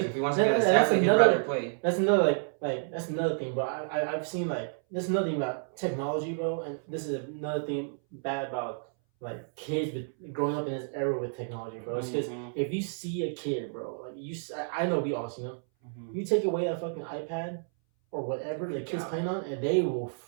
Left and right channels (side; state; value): left; silent; 58 dB below the other